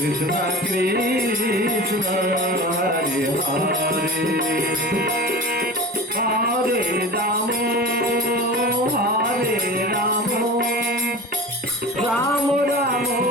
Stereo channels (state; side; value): normal; both; correlation 0.33